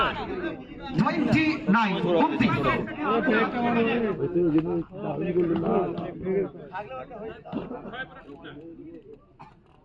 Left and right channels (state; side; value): identical; both; correlation 1.00